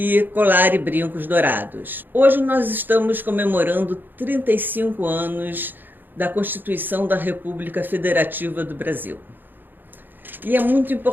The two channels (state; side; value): late; left; 0.091 ms